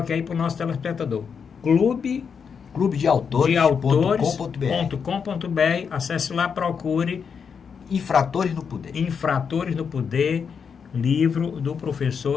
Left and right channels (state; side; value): quieter; right; 6.4 dB